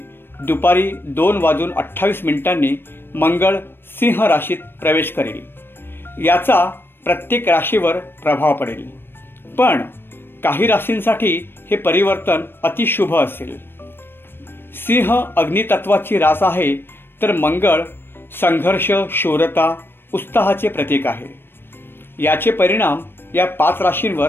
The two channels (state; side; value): late; right; 0.10 ms